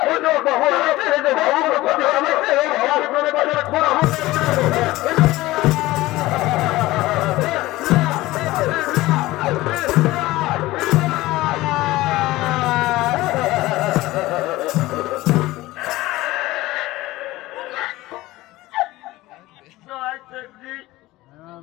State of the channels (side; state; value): right; quieter; 18.2 dB